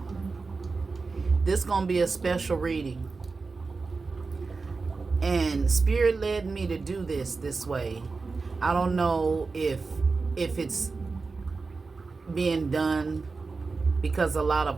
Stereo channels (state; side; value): quieter; left; 4.2 dB